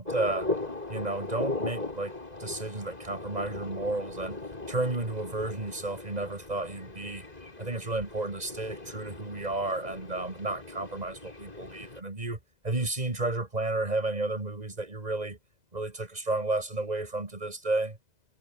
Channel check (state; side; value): late; left; 2.0 ms